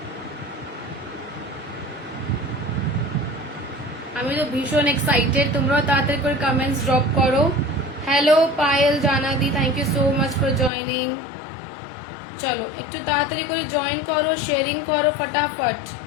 আমি তো ভীষণ এক্সাইটেড, তোমরাও তাড়াতাড়ি করে কমেন্টস ড্রপ করো। হ্যালো পায়েল জানাদি, thank you so much for joining. চলো একটু তাড়াতাড়ি করে জয়েন করো, শেয়ারিং করো,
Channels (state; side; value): drops out; right; at 10.7 s